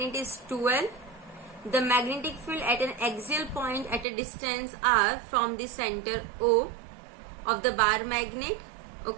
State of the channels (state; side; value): drops out; left; at 4.0 s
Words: is 2L. The magnetic field at an axial point at a distance r from the center O of the bar magnet.